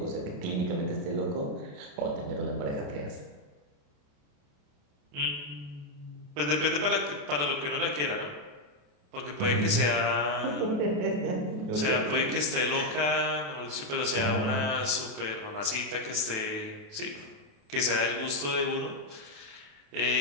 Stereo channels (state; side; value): late; left; 28 ms